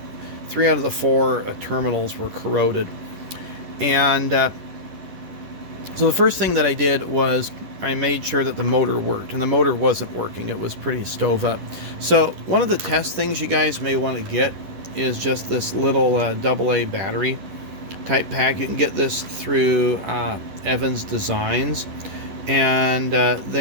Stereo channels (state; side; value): late; left; 10 ms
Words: 3 out of the 4 terminals were corroded. And so the first thing that I did was I made sure that the motor worked, and the motor wasn't working. It was pretty stove up. So one of the test things you guys may want to get is just this little AA battery type pack. You can get this through Evans Designs. And